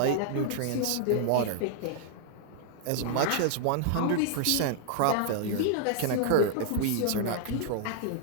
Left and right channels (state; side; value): different; both; correlation -0.01